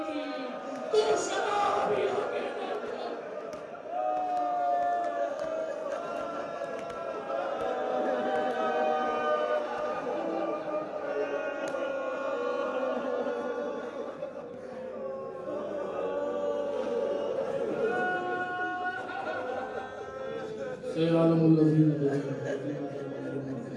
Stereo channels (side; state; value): both; identical; correlation 1.00